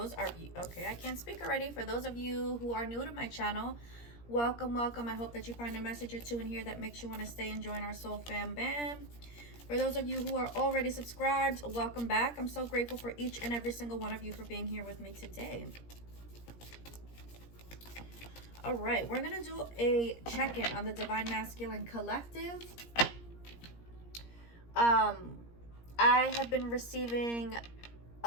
can't speak already. For those of you who are new to my channel, welcome. I hope that you find a message or two in here that makes you want to stay and join our soul fam bam. For those of you who are already subscribed, welcome back. I'm so grateful for each and every single one of you for being here with me today. All right, we're gonna do a check-in on the Divine Masculine Collective. I have been receiving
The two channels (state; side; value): late; right; 17 ms